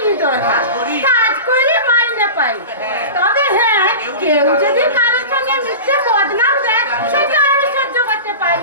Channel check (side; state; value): both; inverted; correlation -0.31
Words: দরকার, কাজ করে মাইনে পাই। তবে হ্যাঁ, কেউ যদি কারোর সঙ্গে মিথ্যে বদনাম দেয় সেটা আমি সহ্য করতে